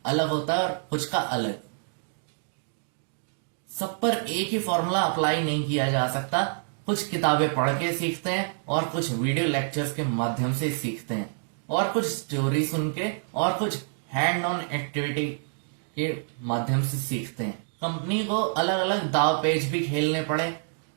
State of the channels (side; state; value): left; silent; digital silence